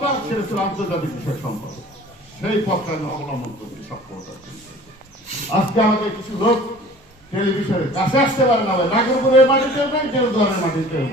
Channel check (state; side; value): normal; both; correlation 0.46